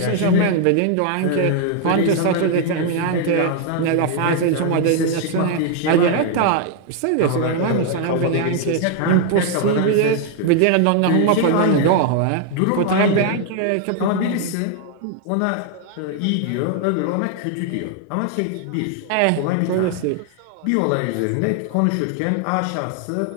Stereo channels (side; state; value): both; different; correlation 0.00